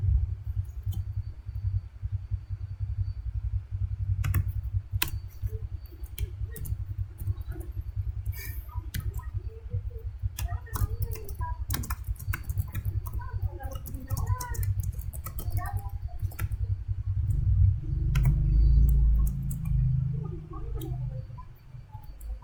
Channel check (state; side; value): identical; both; correlation 1.00